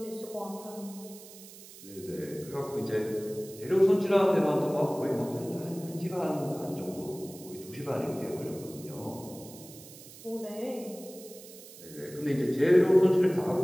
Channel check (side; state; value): right; noise; hiss, 18 dB below the sound